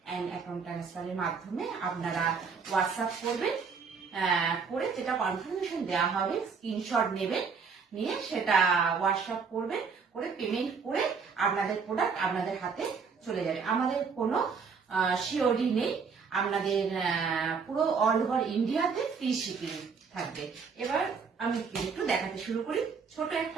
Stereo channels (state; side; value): quieter; left; 5.6 dB